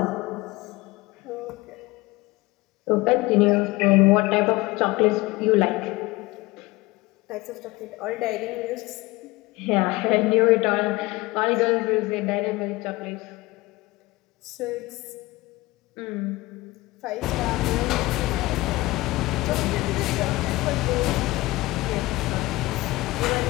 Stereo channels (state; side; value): quieter; right; 20.4 dB